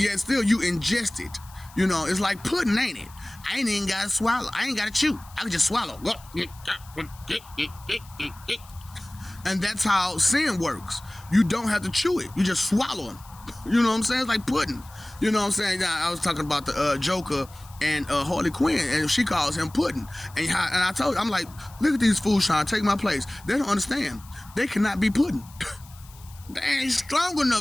still you ingest it. It's like pudding, ain't it? I ain't even gotta swallow. I ain't gotta chew. I can just swallow. And that's how sin works. You don't have to chew it. You just swallow them. You know what I'm saying? It's like pudding. You know what I'm saying? Now, I was talking about the Joker and Harley Quinn, and she calls him pudding. And I told her, I'm like, look at these fools trying to take my place. They don't understand. They cannot be pudding. They ain't strong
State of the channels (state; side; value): noise; left; hiss, 23 dB below the sound